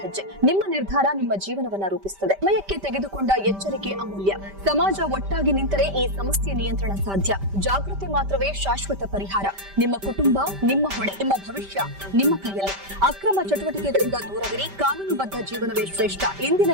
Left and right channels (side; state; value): left; late; 5.1 ms